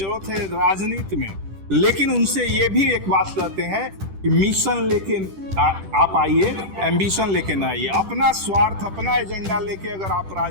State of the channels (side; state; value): left; late; 10 ms